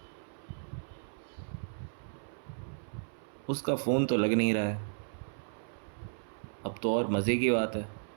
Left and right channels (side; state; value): left; silent; 55 dB below the other